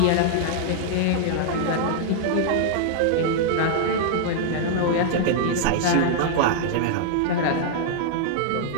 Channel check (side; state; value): both; different; correlation -0.01